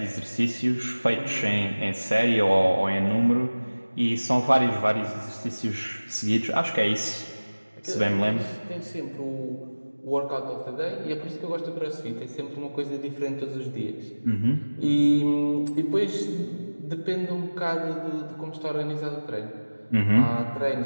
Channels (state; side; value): inverted; both; correlation -1.00